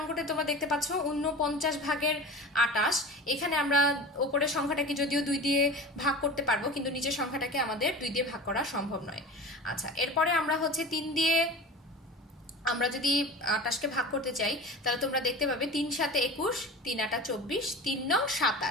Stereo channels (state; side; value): normal; both; correlation 0.34